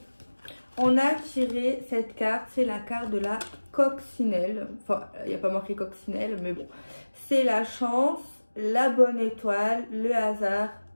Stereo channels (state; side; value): inverted; both; correlation -1.00